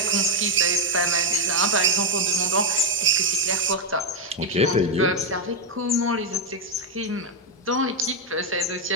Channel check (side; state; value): both; normal; correlation 0.02